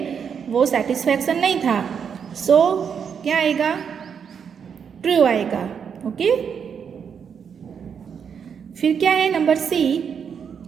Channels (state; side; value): quieter; left; 7.1 dB